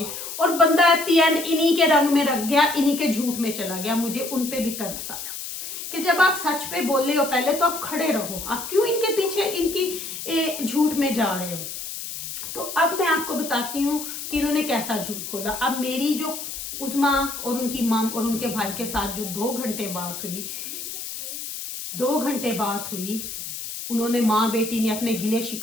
और बंदा एट द एंड इन्हीं के रंग में रख गया, इन्हीं के झूठ में चला गया। मुझे उन पे भी तरस आया कि जब आप सच पे बोल रहे हो पहले तो आप खड़े रहो, आप क्यों इनके पीछे इनकी झूठ में जा रहे हो। तो अब मैं आपको बताती हूँ कि इन्होंने कैसा झूठ बोला। अब मेरी जो उज़मा और उनकी मम और उनके भाई के साथ जो 2 घंटे बात हुई, उन्होंने, माँ बेटी ने अपने गिले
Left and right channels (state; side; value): noise; left; hiss, 8 dB below the sound